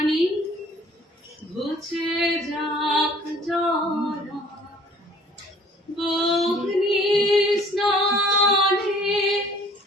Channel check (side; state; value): both; normal; correlation 0.55